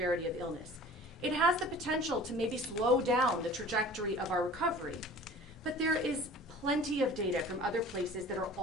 of illness. It has the potential to maybe slow down the trajectory of our recovery, but there is plenty of data from other places that are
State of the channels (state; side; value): normal; both; correlation 0.44